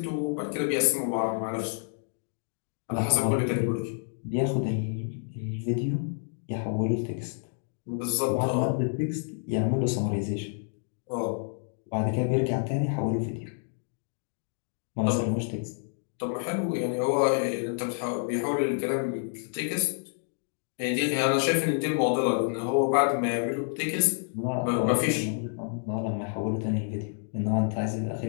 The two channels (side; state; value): right; silent; digital silence